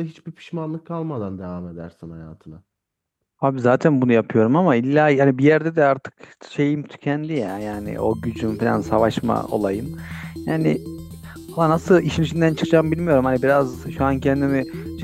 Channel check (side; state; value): both; identical; correlation 1.00